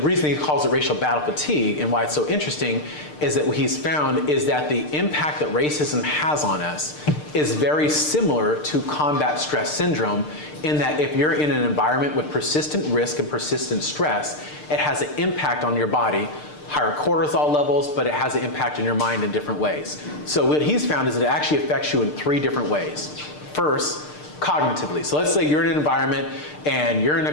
he calls it racial battle fatigue and why it's so interesting is that what he's found is that the impact that racism has on us is very similar to combat stress syndrome, in that if you're in an environment with persistent risk and persistent stress, it has an impact on your body, higher cortisol levels, but it has an impact on your mind in different ways. So what he's found is that it actually affects you in 3 different ways. First, cognitively. So let's say you're in an environment and you're in a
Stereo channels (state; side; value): late; right; 6.6 ms